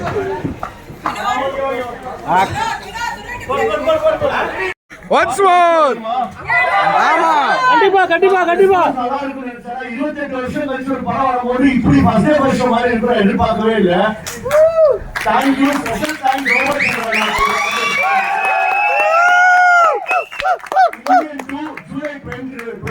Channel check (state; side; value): identical; both; correlation 1.00